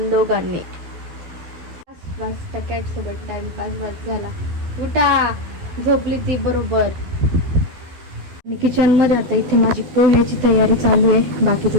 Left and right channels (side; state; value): left; late; 12 ms